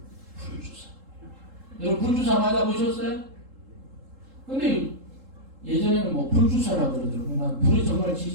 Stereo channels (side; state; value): left; late; 3.7 ms